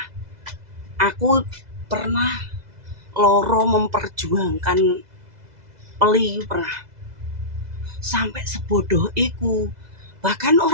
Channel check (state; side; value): late; left; 2.0 ms